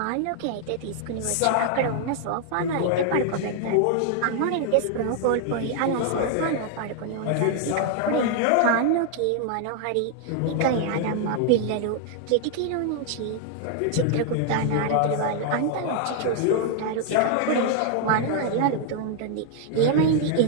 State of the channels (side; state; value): both; different; correlation 0.00